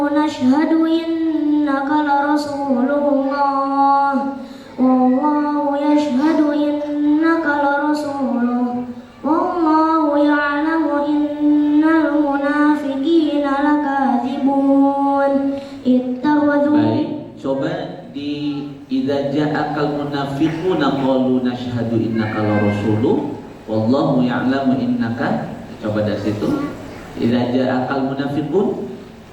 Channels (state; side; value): identical; both; correlation 1.00